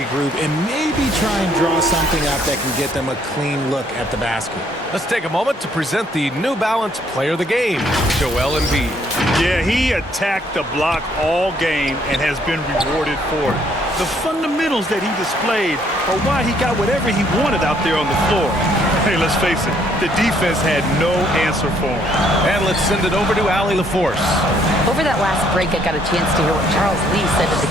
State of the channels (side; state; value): both; normal; correlation 0.66